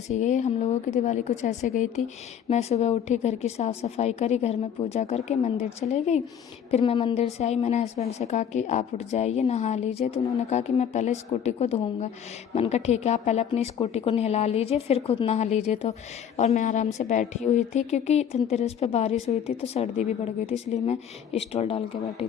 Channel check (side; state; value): right; quieter; 8.6 dB